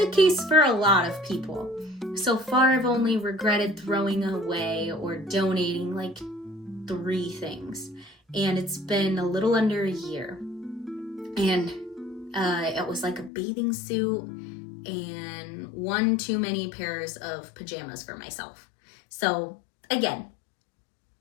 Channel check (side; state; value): right; drops out; at 13.3 s